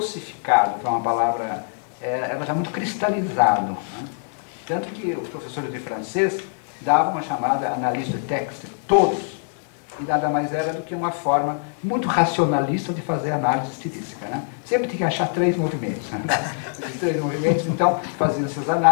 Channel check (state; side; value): silent; right; 63 dB below the other